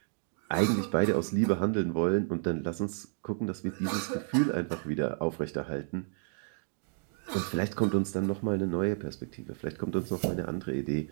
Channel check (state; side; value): silent; left; 57 dB below the other